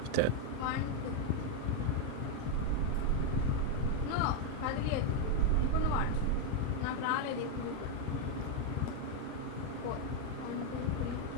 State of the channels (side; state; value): both; different; correlation 0.01